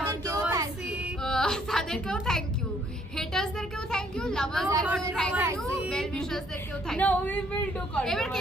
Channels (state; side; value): normal; both; correlation 0.65